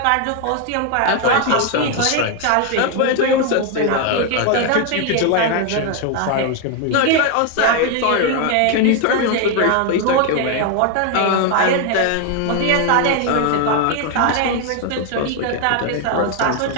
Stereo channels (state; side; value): different; both; correlation 0.01